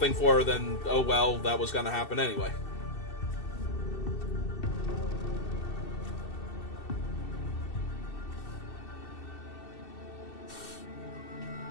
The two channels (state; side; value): late; right; 2.7 ms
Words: for her, then, oh well, that was going to happen anyway.